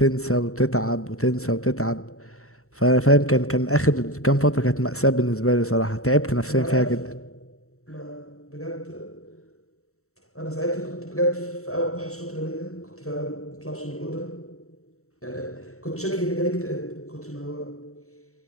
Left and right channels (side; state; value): right; late; 0.64 ms